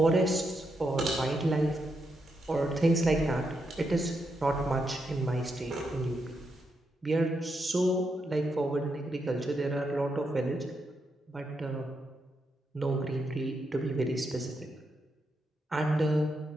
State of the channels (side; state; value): both; normal; correlation 0.82